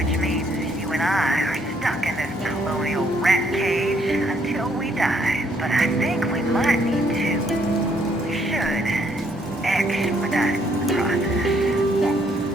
means you and I are stuck in this colonial rat cage until we die. But I think we might need to. We should expedite the process.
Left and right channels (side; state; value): both; normal; correlation 0.69